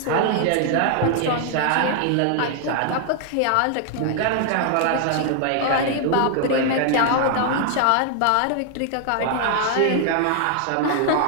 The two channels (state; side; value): different; both; correlation 0.00